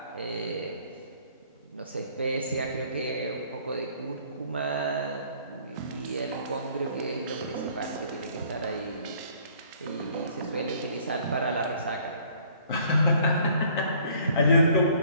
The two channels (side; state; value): both; inverted; correlation -0.58